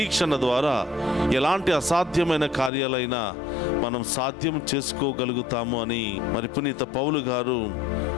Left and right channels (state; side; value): drops out; right; at 2.7 s